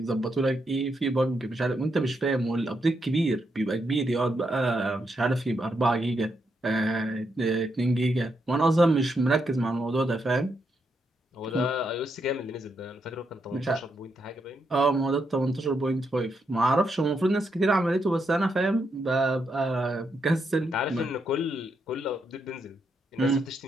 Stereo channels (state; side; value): normal; both; correlation 0.81